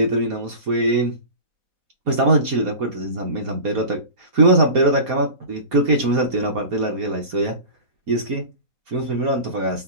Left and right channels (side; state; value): left; late; 4.2 ms